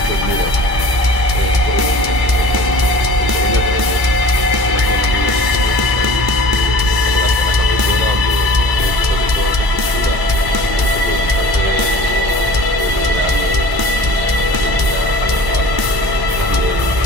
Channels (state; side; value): late; left; 1.1 ms